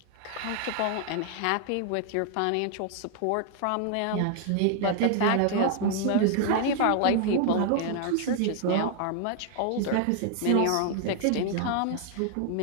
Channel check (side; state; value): both; different; correlation 0.00